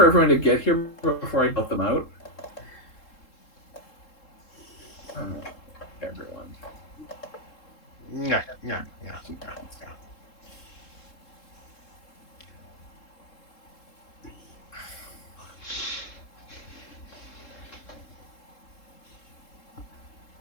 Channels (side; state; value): right; late; 3.7 ms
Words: everyone to get here before I built them out. Everyone. Yeah.